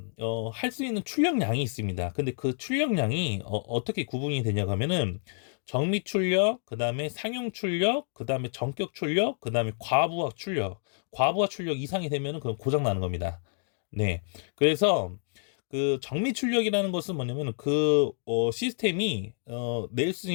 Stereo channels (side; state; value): right; silent; 59 dB below the other